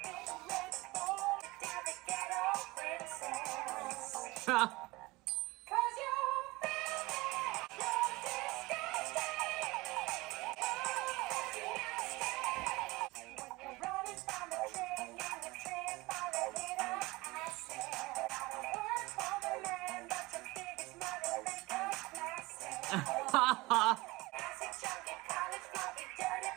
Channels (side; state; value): left; quieter; 21.8 dB